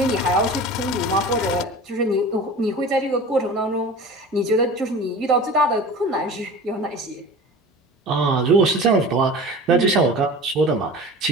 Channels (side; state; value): both; normal; correlation 0.37